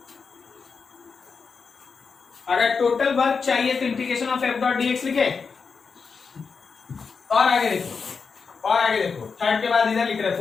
अगर टोटल वर्क चाहिए तो integration of f dot dx लिखें। और आगे देखो, और आगे देखो, थर्ड के बाद इधर लिख रहे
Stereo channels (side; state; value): right; quieter; 5.3 dB